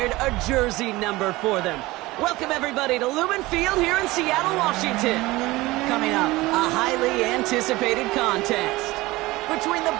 a jersey number for them. Welcome, everybody, to Lumen Field here in Seattle, Washington. Coming up, a highly anticipated contest between the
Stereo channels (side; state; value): left; quieter; 20.0 dB